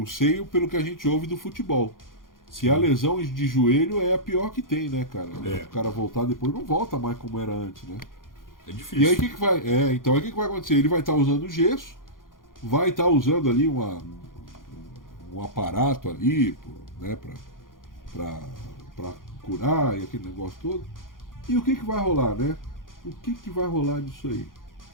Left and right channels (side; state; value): right; late; 0.90 ms